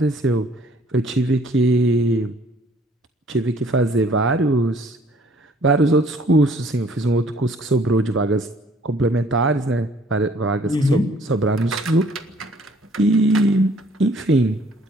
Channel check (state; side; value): normal; both; correlation 0.58